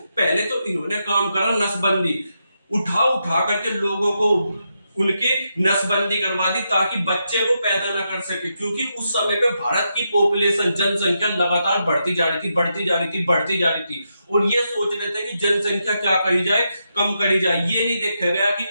पहले तो इन्होंने काम करा नसबंदी, उठा उठा करके लोगों को उनके नसबंदी करवा दी ताकि बच्चे को पैदा ना कर सके, क्योंकि उस समय पे भारत की पॉपुलेशन जनसंख्या लगातार बढ़ती जा रही थी, बढ़ती जा रही थी, बढ़ती जा रही थी। और ये सोच रहे थे कि जनसंख्या क्या करी जाए, कम करी जाए। ये नहीं देखा गया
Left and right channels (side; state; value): both; inverted; correlation -0.84